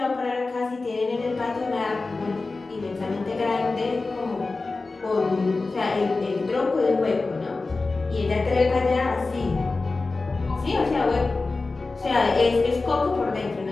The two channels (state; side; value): quieter; right; 3.6 dB